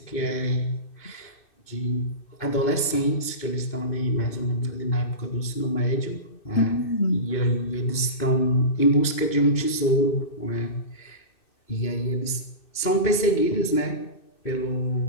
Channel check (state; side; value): late; right; 2.6 ms